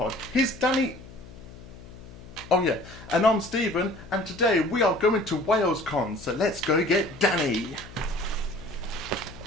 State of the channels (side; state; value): left; noise; hum, 17 dB below the sound